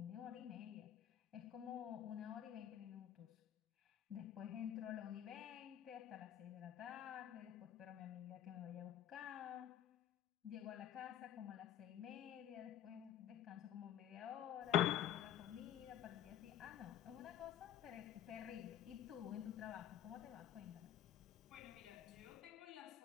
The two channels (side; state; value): right; quieter; 10.9 dB